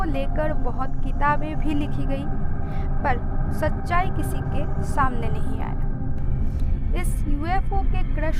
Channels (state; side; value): identical; both; correlation 1.00